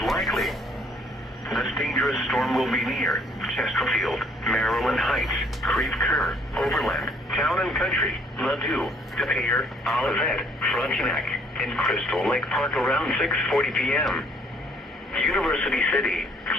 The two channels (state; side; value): normal; both; correlation 0.62